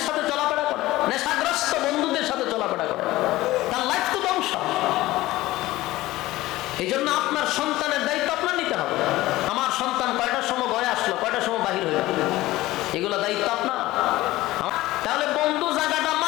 সাথে চলাফেরা করে, নেশাগ্রস্ত বন্ধুদের সাথে চলাফেরা করে, তার লাইফ তো ধ্বংস। এই জন্য আপনার সন্তানের দায়িত্ব আপনার নিতে হবে। আমার সন্তান কয়টার সময় ঘরে আসলো, কয়টার সময় বাহির হইল, এগুলো দায়িত্ব আপনার। তাহলে বন্ধু জায়গাটা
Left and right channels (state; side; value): quieter; right; 17.5 dB